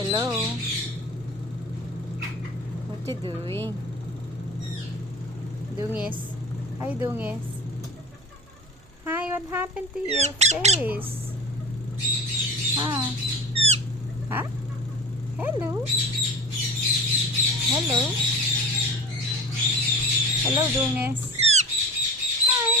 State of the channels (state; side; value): noise; right; hum, 28 dB below the sound